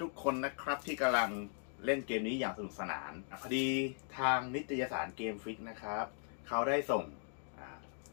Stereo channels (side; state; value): right; silent; 52 dB below the other